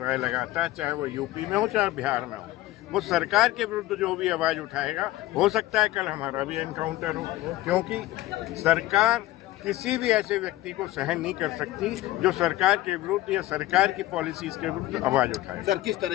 है लगातार, चाहे वो यूपी में हो चाहे बिहार में हो, वो सरकार के विरुद्ध जो भी आवाज उठाएगा, हो सकता है कल हमारा भी एनकाउंटर हो, क्योंकि सरकार किसी भी ऐसे व्यक्ति को सहन नहीं कर सकती जो सरकार के विरुद्ध या सरकार की पॉलिसीज के विरुद्ध आवाज उठाए। सर किस तरह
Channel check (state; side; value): quieter; right; 16.4 dB